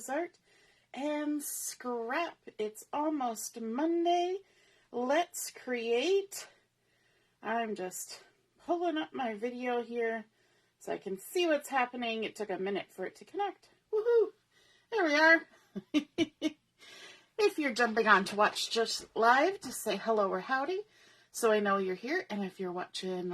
Art and Scrap. It's almost Monday. Let's create. I'm just pulling up my video here so I can see what's happening. It took a minute for it to connect. Woohoo! There we are. If you're jumping on to watch just live, just say hello or howdy, so I know you're here. And if you're watching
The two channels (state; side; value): identical; both; correlation 1.00